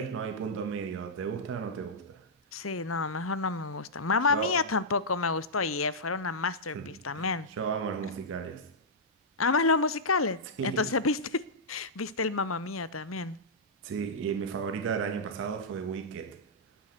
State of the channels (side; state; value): both; normal; correlation -0.10